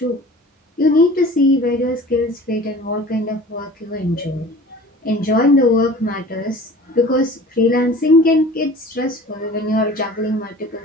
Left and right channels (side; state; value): both; normal; correlation 0.43